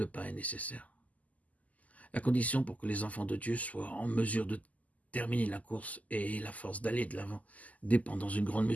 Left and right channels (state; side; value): late; right; 0.075 ms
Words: pain est nécessaire. La condition pour que les enfants de Dieu soient en mesure de terminer la course et la force d'aller de l'avant dépend dans une grande